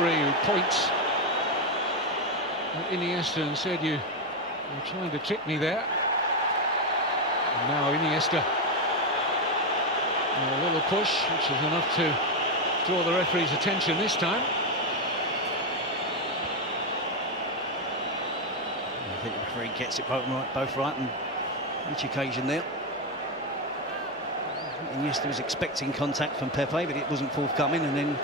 who points at Iniesta and said, you're trying to trick me there. And now Iniesta. A little push, which is enough to draw the referee's attention this time. I think the referee gets it both right on each occasion there. Iniesta was expecting contact from Pepe, but it wasn't forthcoming, and then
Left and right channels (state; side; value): noise; right; hum, 30 dB below the sound